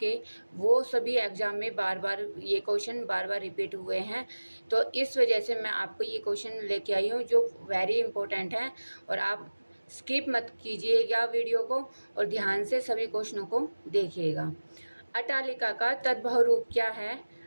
वो सभी एग्ज़ाम में बार बार ये क्वेश्चन बार बार रिपीट हुए हैं। तो इस वजह से मैं आपको ये क्वेश्चन लेके आई हूँ जो वेरी इंपॉर्टेंट हैं, और आप स्किप मत कीजिएगा वीडियो को और ध्यान से सभी क्वेश्चनों को देखिएगा। अटालिका का तद्भव रूप क्या है?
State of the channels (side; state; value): both; inverted; correlation -1.00